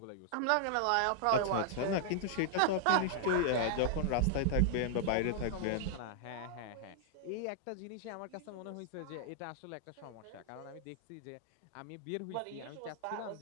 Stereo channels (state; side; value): different; both; correlation -0.01